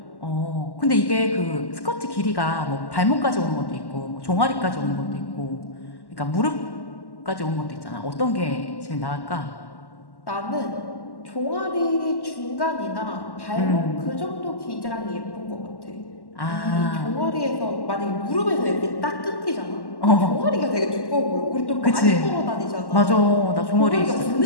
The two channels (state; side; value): late; right; 1.1 ms